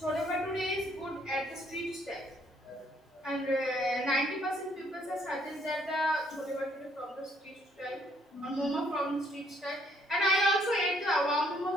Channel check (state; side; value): normal; both; correlation 0.66